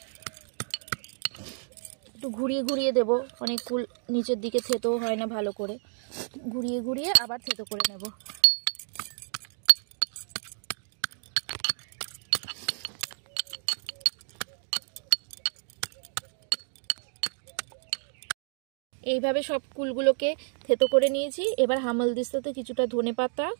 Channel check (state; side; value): silent; left; 58 dB below the other